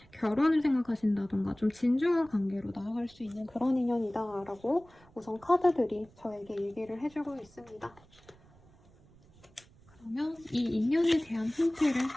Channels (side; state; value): right; noise; rumble, 27 dB below the sound